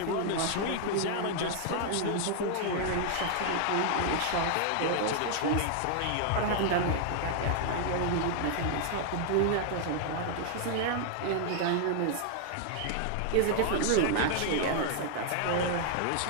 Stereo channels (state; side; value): different; both; correlation 0.00